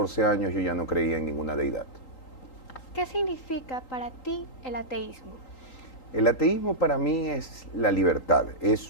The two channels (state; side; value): late; right; 3.8 ms